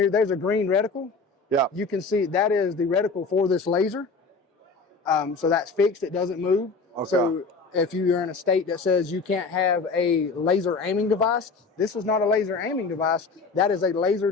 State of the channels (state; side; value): quieter; right; 4.3 dB